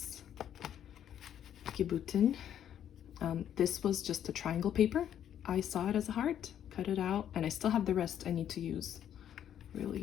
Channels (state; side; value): quieter; right; 10.0 dB